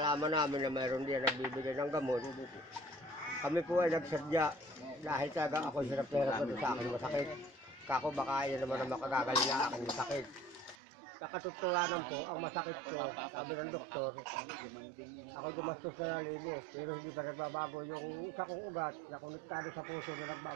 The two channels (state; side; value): drops out; left; at 10.8 s